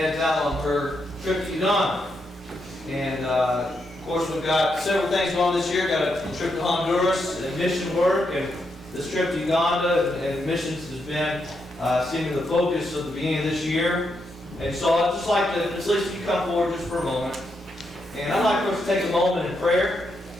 out on her trip to Uganda. And of course, we've got several things going on this year. Got a trip to Honduras and mission work, and this trip to Uganda and missions has been seemingly the focus of the beginning of this year. And so I'd just like to, at least you come forward just for a moment. And I'd like for us to take a moment in prayer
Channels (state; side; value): normal; both; correlation 0.82